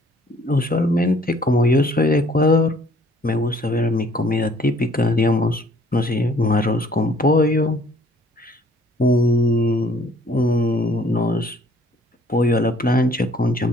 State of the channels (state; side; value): normal; both; correlation 0.59